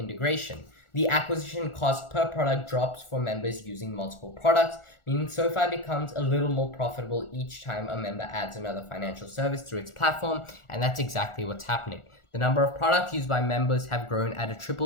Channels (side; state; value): right; late; 1.4 ms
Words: The acquisition cost per product drops for members using multiple products, meaning SoFi becomes a little more profitable each time a member adds another financial service through its platform, and that's exactly what's happening. The number of products used by members have grown at a